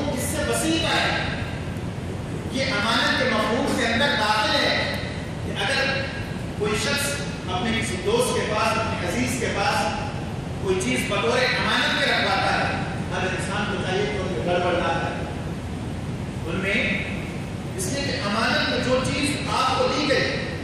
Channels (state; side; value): identical; both; correlation 1.00